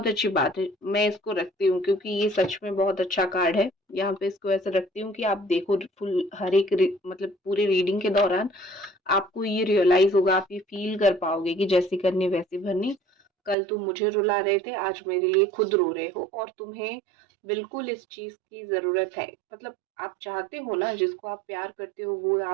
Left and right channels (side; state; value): left; drops out; at 13.6 s